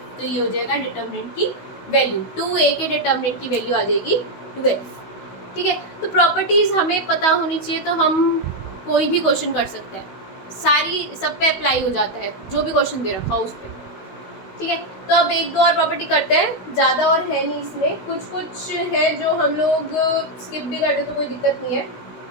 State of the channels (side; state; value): right; late; 16 ms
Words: तो ये हो जाएगा डिटर्मिनेंट की वैल्यू, 2a के डिटर्मिनेंट की वैल्यू आ जाएगी 12, ठीक है। तो प्रॉपर्टीज हमें पता होनी चाहिए, तो हम कोई भी क्वेश्चन कर सकते हैं, सारी सब पे अप्लाई हो जाता है जो भी क्वेश्चन दे रखा हो उस पर, ठीक है। तो अब एक दो और प्रॉपर्टी करते हैं, ज़्यादा और है नहीं इसमें, कुछ है जो हम लोग स्किप भी करते तो कोई दिक्कत नहीं है।